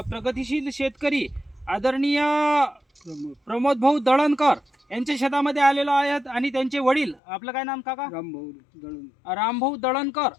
प्रगतिशील शेतकरी आदरणीय प्रमोद भाऊ दळणकर यांच्या शेतामध्ये आलेलो आहेत आणि त्यांचे वडील, आपलं काय नाम काका? रामभाऊ दळणकर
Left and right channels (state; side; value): drops out; right; at 7.2 s